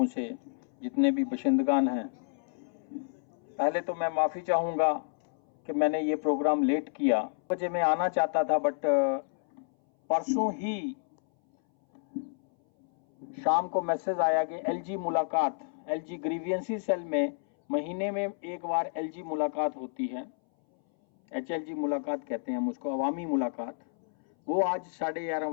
से जितने भी बशिंदगान हैं, पहले तो मैं माफ़ी चाहूँगा कि मैंने ये प्रोग्राम लेट किया। बजे मैं आना चाहता था, बट परसों ही शाम को मैसेज आया कि एलजी मुलाकात, एलजी ग्रीवियंसी सेल में महीने में एक बार एलजी मुलाकात होती है, एचएलजी मुलाकात कहते हैं हम उसको, अवामी मुलाकात। वो आज 11:30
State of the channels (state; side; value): silent; right; 58 dB below the other